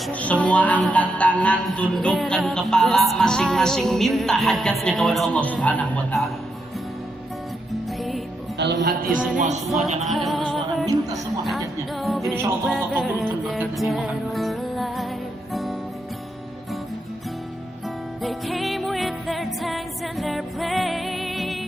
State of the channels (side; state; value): both; normal; correlation 0.82